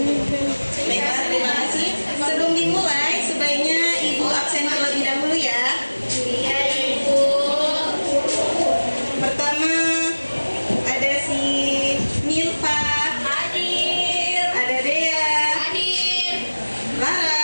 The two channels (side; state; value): both; inverted; correlation -1.00